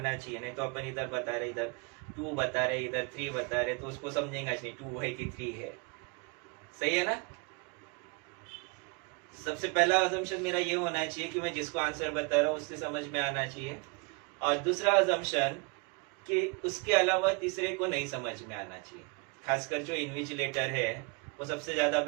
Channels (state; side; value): quieter; left; 31.2 dB